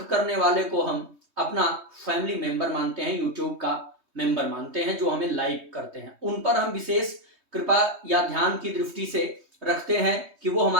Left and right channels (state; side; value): late; left; 3.2 ms